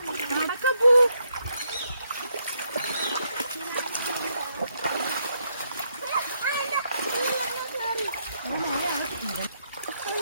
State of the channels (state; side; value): inverted; both; correlation -0.76